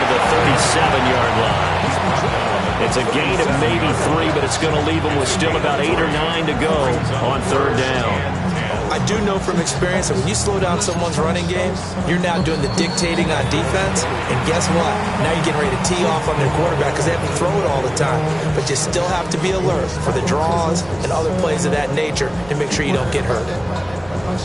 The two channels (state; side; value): noise; right; rumble, 21 dB below the sound